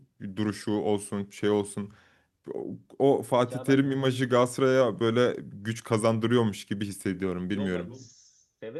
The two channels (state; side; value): identical; both; correlation 1.00